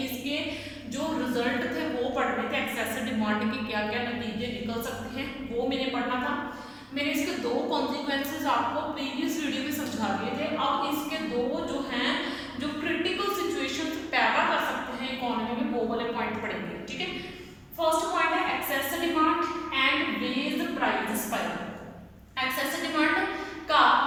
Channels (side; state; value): both; identical; correlation 1.00